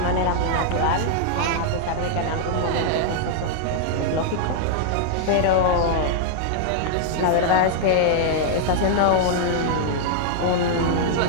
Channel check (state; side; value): different; both; correlation -0.01